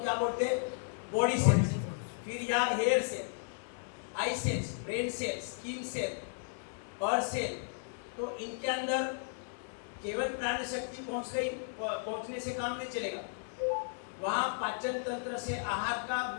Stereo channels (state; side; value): silent; right; digital silence